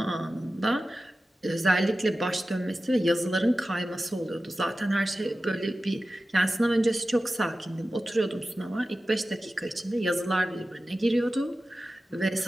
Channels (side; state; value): both; normal; correlation 0.94